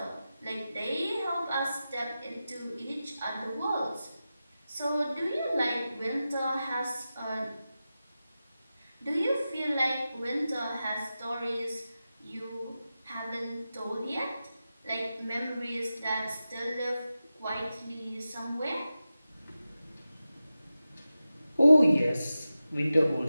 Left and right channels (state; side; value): inverted; both; correlation -0.93